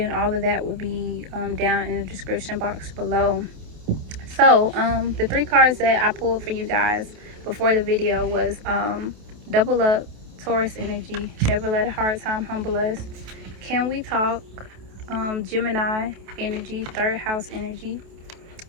all of that will be down in the description box below. So the three cards that I pulled for you guys before the video was Double Up, Taurus Energy, Never Let a Hard Time Humble Us, Can We Talk, Gemini Energy, Third House Energy,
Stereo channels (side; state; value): left; late; 28 ms